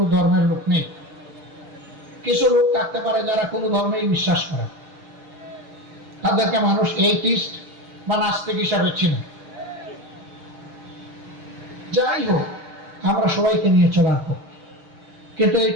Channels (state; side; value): late; left; 6.6 ms